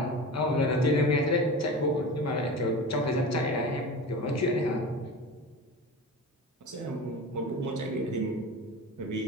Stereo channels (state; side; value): normal; both; correlation 0.31